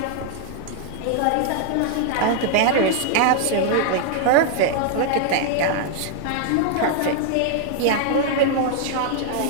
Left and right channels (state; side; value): different; both; correlation 0.00